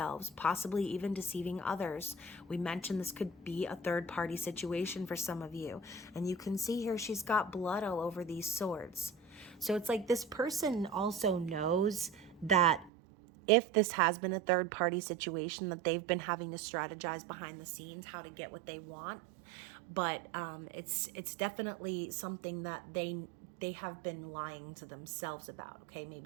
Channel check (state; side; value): drops out; left; at 12.9 s